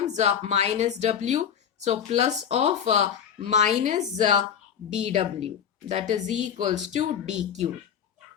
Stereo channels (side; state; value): right; quieter; 8.4 dB